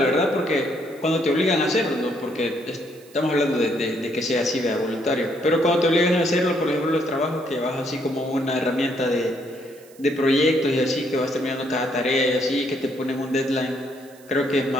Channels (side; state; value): right; noise; hiss, 26 dB below the sound